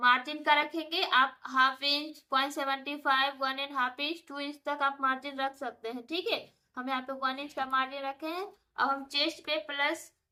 का रखेंगे। आप हाफ इंच, 0.75, 1.5 इंच, 2 इंच तक आप मार्जिन रख सकते हैं। ठीक है, हम यहाँ पे 1 इंच का मार्जिन रखे हैं। अब हम चेस्ट पे प्लस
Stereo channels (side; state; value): both; identical; correlation 1.00